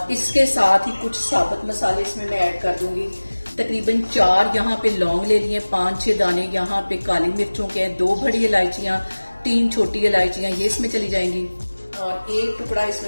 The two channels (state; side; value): inverted; both; correlation -1.00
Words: इसके साथ ही कुछ साबुत मसाले इसमें मैं ऐड कर दूंगी। तकरीबन 4 यहाँ पे लौंग ले लिए, 5-6 दाने यहाँ पे काली मिर्चों के हैं, 2 बड़ी इलायचियाँ, 3 छोटी इलायचियाँ ये इसमें चली जाएंगी। और 1 टुकड़ा